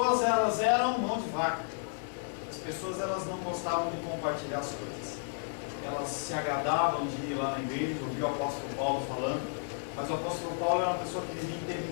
elas eram mão de vaca. As pessoas, elas não gostavam de compartilhar as coisas. Elas se agradavam de ir lá na igreja, ouvir o apóstolo Paulo falando, mas o apóstolo Paulo era uma pessoa que vivia em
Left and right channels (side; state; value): right; silent; digital silence